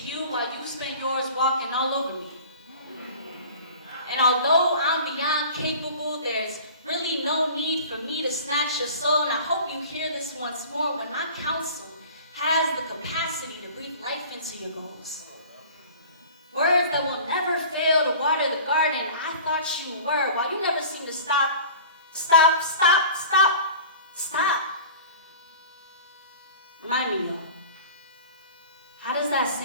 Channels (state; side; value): inverted; both; correlation -0.41